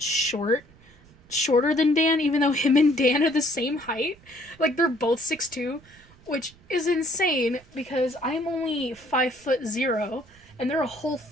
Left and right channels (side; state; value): right; noise; rumble, 26 dB below the sound